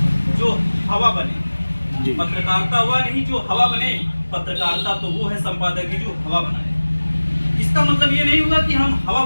जो हवा बने, पत्रकारिता हुआ नहीं जो हवा बने, पत्रकारिता तो वो है संपादक की जो हवा बनाए। इसका मतलब ये नहीं होगा कि हम हवा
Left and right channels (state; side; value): inverted; both; correlation -1.00